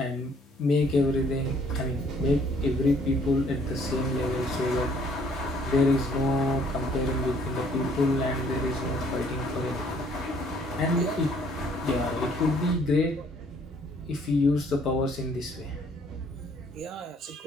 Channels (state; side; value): normal; both; correlation 0.62